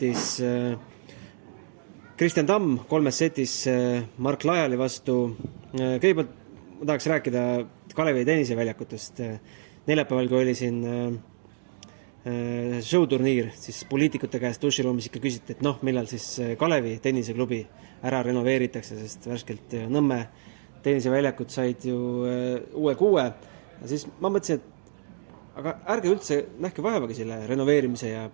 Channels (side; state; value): left; silent; digital silence